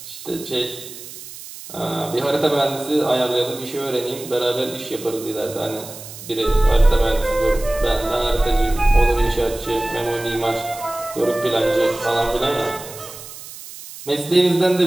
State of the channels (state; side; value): noise; right; hiss, 14 dB below the sound